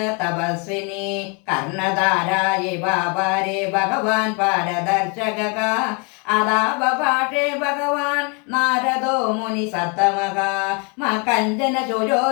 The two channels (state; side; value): quieter; right; 33.7 dB